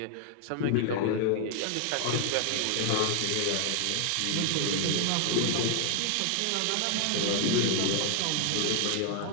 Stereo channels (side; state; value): both; different; correlation 0.00